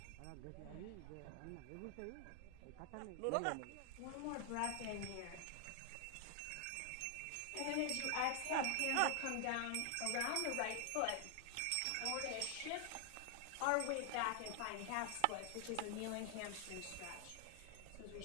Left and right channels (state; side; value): different; both; correlation 0.00